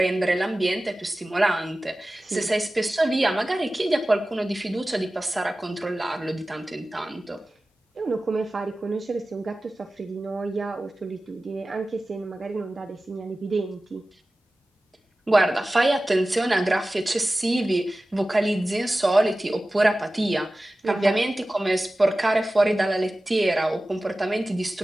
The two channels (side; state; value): both; normal; correlation 0.96